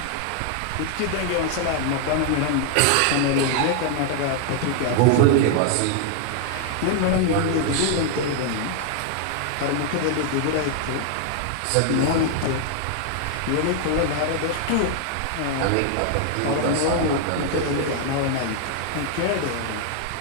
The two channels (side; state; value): both; different; correlation 0.00